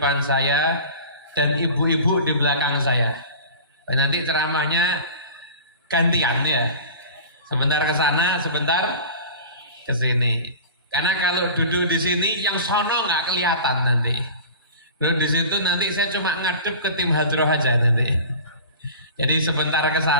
saya dan ibu-ibu di belakang saya. Dan nanti ceramahnya gantian ya, sebentar ke sana, sebentar ke sini. Karena kalau duduk di sini yang sono nggak kelihatan nanti. Duduk di situ nanti saya cuma ngadep ke tim hadroh aja nanti. Jadi sebentar ke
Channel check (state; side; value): inverted; both; correlation -0.37